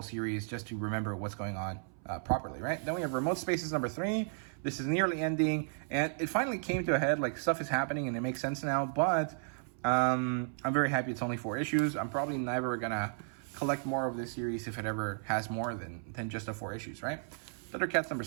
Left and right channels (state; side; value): silent; left; 55 dB below the other